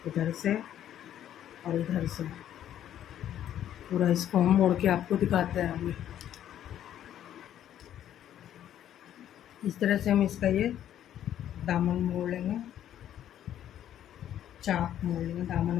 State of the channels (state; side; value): quieter; right; 11.0 dB